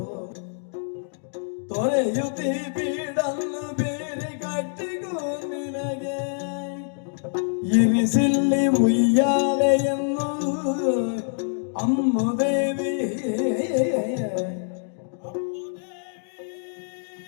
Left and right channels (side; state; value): right; silent; digital silence